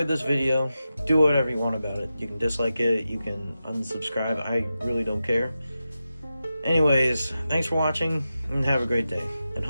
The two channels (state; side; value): inverted; both; correlation -0.91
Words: this video, do whatever you want about it. You can dislike it, you can unsubscribe, I really don't care. Anyways, thanks for watching, and have a great day. And